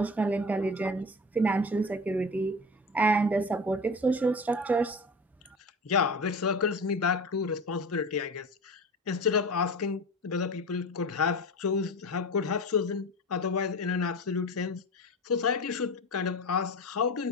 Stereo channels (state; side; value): normal; both; correlation 0.30